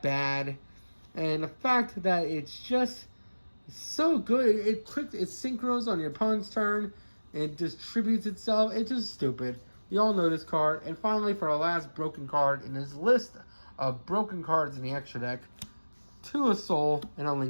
bad. And the fact that it's just so good. It synchros on your opponent's turn. It distributes itself. It's just stupid. You all know this card. And finally, for our last broken card in this list of broken cards in the extra deck, 2 a Soul and a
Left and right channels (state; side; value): inverted; both; correlation -1.00